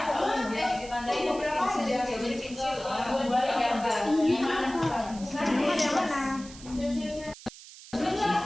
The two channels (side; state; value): right; noise; hiss, 17 dB below the sound